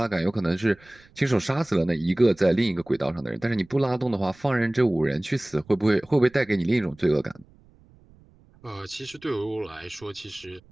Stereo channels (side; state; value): right; noise; rumble, 28 dB below the sound